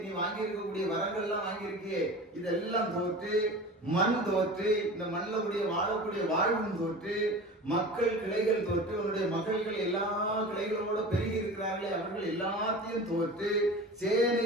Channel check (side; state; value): both; normal; correlation 0.35